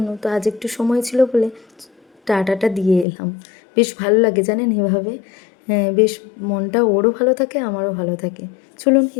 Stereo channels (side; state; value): right; drops out; at 3.1 s